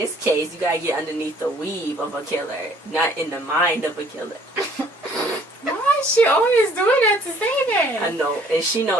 case, you gotta get underneath the weave of a killer, not in the mind of a killer. Why is she always doing that to Zayday? I know. And she know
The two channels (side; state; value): both; normal; correlation 0.59